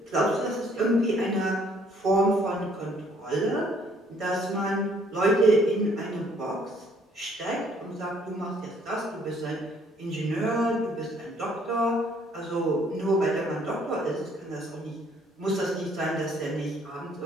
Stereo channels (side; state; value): both; normal; correlation 0.63